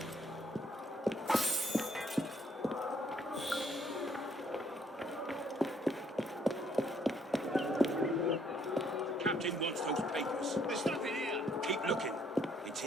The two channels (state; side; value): normal; both; correlation 0.67